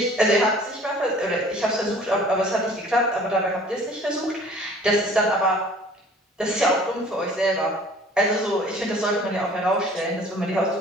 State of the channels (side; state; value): both; normal; correlation 0.51